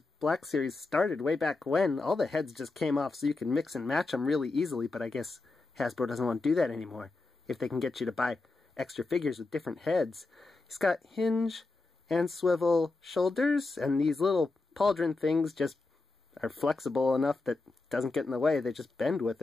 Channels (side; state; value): right; quieter; 3.5 dB